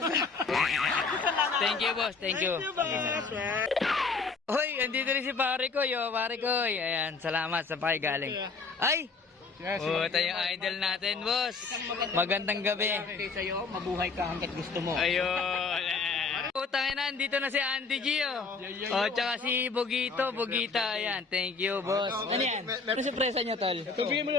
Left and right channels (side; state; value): right; quieter; 4.6 dB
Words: Thank you, boss. Thank you. Hoy, andito rin si pare ko, yo. Pare ko. Ayan, salamat sa pakigaling. Ay! Oh, ito yung idol natin, boss. Magandang gabi. Sa'yo, mabuhay ka hanggat gusto mo. Ayun. Utangin na, dito na si Auntie Gio. Oh, tsaka si Bugita. Ayan, thank you, boss. Ano yan? Ano surpresa niyo, tol? Sabihin mo